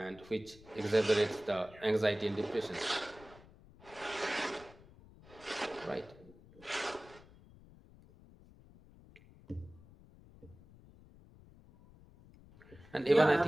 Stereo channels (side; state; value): left; noise; rumble, 22 dB below the sound